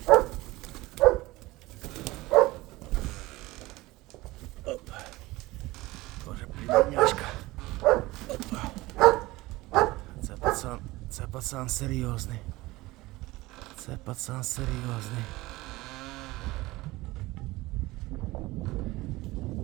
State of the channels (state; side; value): quieter; left; 19.8 dB